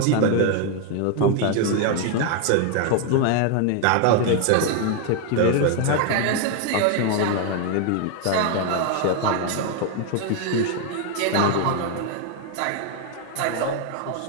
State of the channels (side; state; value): both; different; correlation 0.00